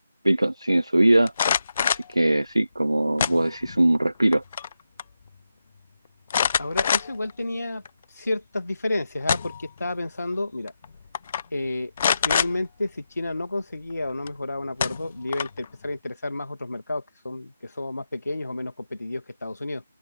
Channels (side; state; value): both; inverted; correlation -0.90